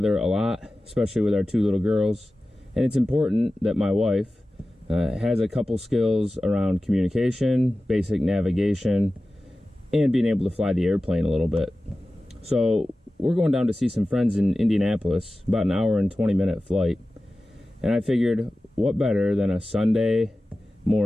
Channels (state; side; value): normal; both; correlation 0.95